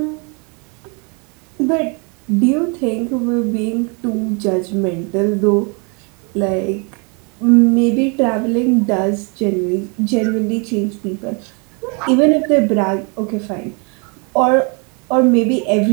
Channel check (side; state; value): left; quieter; 34.0 dB